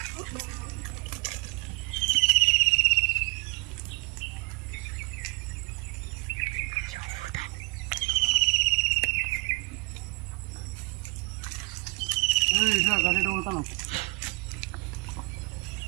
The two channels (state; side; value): quieter; left; 29.4 dB